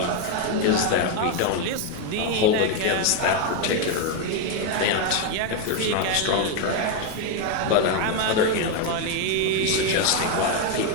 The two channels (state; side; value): different; both; correlation 0.01